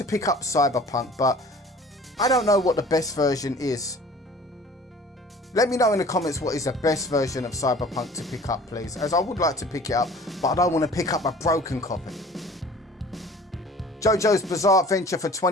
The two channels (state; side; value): normal; both; correlation 0.47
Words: pick up Cyberpunk, but I don't know what the best version is. Let me know in the comments what is the best version of Cyberpunk to pick up, please, as I would like to pick it up, but I don't want to pick up a broken copy. JoJo's Bizarre Adventure for